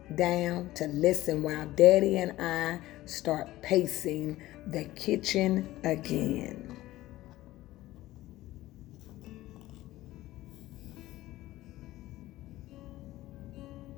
down to listen while Daddy and I start pacing the kitchen again.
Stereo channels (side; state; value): right; quieter; 16.4 dB